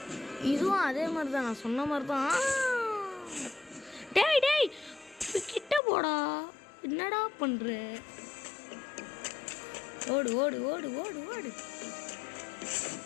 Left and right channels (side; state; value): right; drops out; at 5.8 s